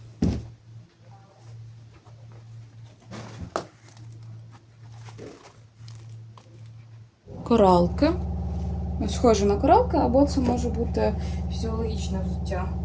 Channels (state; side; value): identical; both; correlation 1.00